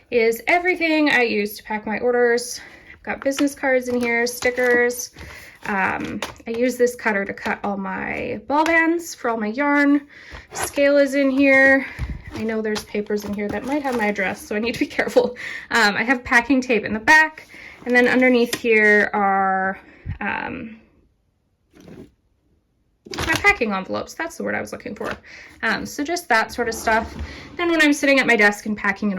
is everything I use to pack my orders. I've got business cards in here, stickers. I use this cutter to cut all my ball bands for all my yarn. Scale is in here. I know there's papers in here that might have my address, so I need to be careful. I have packing tape in the back, and then underneath here are my packing envelopes. That's the word I was looking for. So just that sort of stuff. Then when I'm sitting at my desk and packing an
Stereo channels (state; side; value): identical; both; correlation 1.00